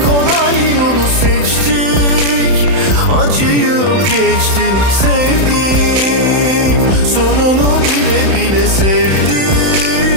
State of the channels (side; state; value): left; late; 31 ms